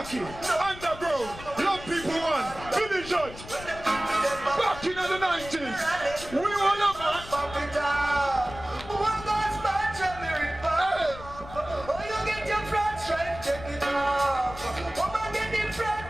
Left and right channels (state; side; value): noise; left; rumble, 14 dB below the sound